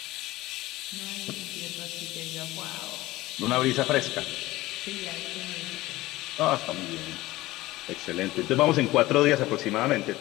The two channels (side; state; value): right; quieter; 18.1 dB